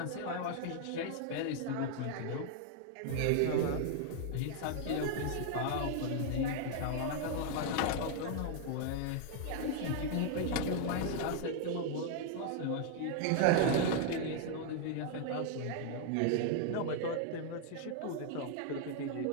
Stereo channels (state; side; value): different; both; correlation 0.00